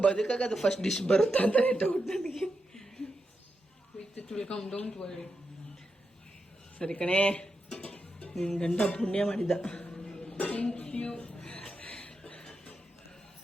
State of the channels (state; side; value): normal; both; correlation 0.87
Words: ಬದುಕಾಗ ಅದು ಫಸ್ಟ್ ಡಿಶ್ ಬರುತ್ತೆ ಅಂತ ಡೌಟ್ ನನಗೆ. ಸರಿ ಕಣೆ, ನಿನ್ನ ಗಂಡ ಪುಣ್ಯ ಮಾಡಿದ್ದ